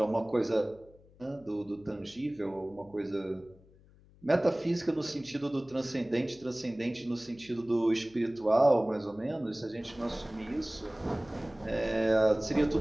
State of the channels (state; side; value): noise; left; hum, 26 dB below the sound